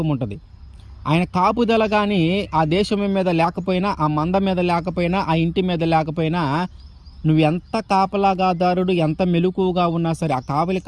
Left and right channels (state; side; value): identical; both; correlation 1.00